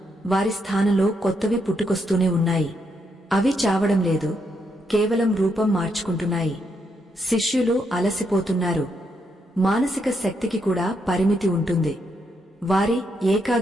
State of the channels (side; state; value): both; normal; correlation 0.78